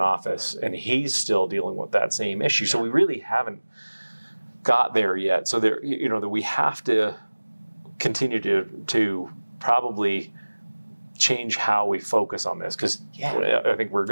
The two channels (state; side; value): inverted; both; correlation -1.00